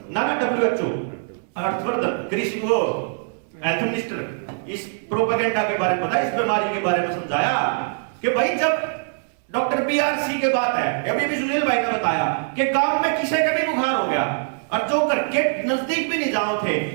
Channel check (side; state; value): left; silent; 64 dB below the other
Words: ना WHO। हर्षवर्धन कृषि वो हेल्थ मिनिस्टर इस प्रोपेगेंडा के बारे में बताया, इस बीमारी के बारे में समझाया कि भाई जब डॉक्टर BRC के बात है, अभी भी सुनील भाई ने बताया कि गांव में किसी का भी बुखार हो गया और जो घर के नजदीक भी नहीं जाओ थे